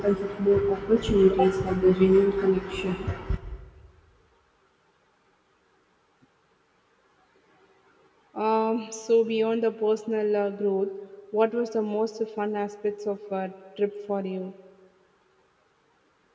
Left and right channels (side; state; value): both; identical; correlation 1.00